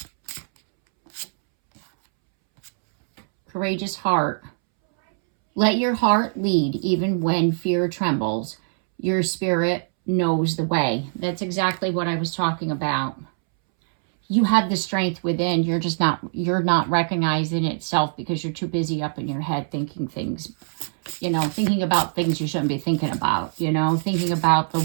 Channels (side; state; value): left; silent; 63 dB below the other